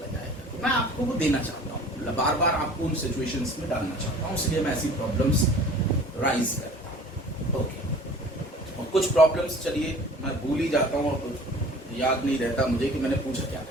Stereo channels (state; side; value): normal; both; correlation 0.46